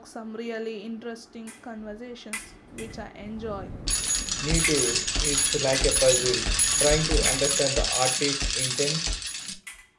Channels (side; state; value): both; identical; correlation 1.00